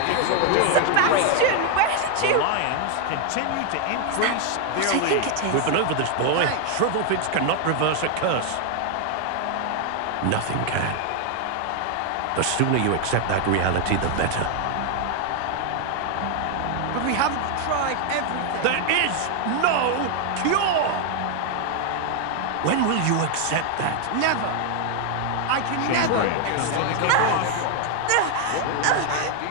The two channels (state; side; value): different; both; correlation 0.01